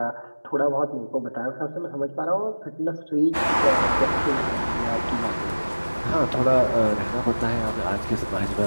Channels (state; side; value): inverted; both; correlation -1.00